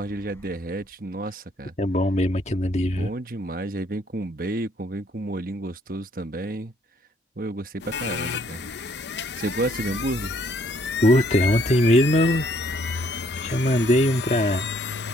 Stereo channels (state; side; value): normal; both; correlation 0.66